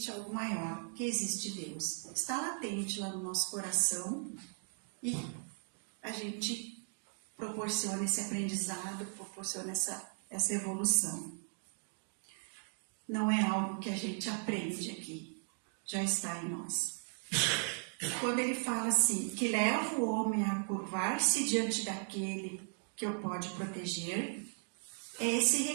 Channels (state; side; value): silent; left; 53 dB below the other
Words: algo maior, que existe Deus. Está latente lá no nosso coração e a gente proporciona esse aprendizado, proporciona essa evolução. Não é algo que a gente aprende aqui, já está em nós. Quando ele fala assim, que leva o homem a curvar-se diante daquele que o pode proteger, é esse